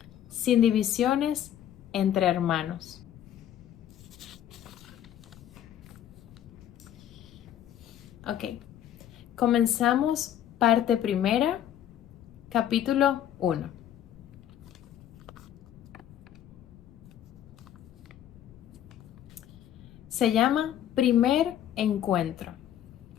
sin divisiones entre hermanos. Ok, comenzamos parte primera, capítulo 1. Se llama Primer Encuentro.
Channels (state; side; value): quieter; right; 10.9 dB